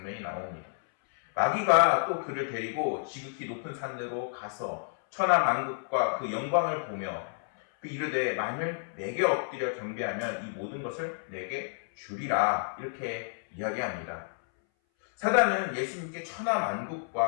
나옵니다. 마귀가 또 그를 데리고 지극히 높은 산으로 가서 천하 만국과 그 영광을 보며 그 이르되 만일 내게 엎드려 경배하면 이 모든 것을 내게 주리라 이렇게 이야기합니다. 사단은 예수님께 천하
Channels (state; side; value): silent; right; 58 dB below the other